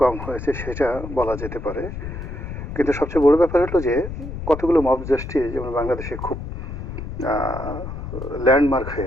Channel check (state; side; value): noise; left; rumble, 8 dB below the sound